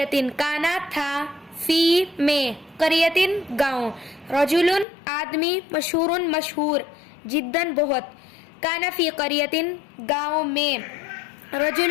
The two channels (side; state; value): right; drops out; at 4.9 s